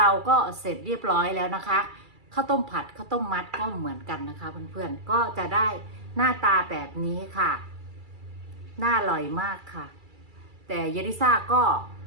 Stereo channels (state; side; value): late; left; 2.3 ms